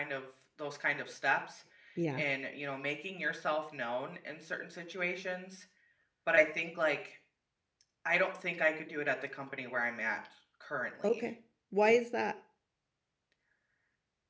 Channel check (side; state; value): both; identical; correlation 1.00